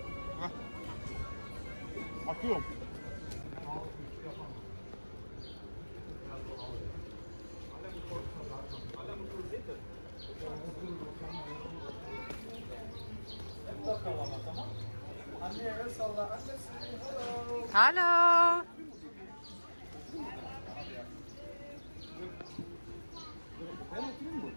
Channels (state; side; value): inverted; both; correlation -1.00